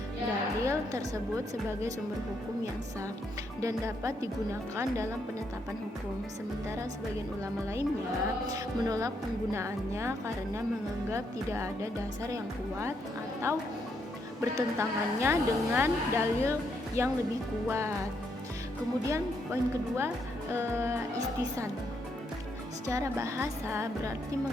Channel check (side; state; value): both; normal; correlation 0.76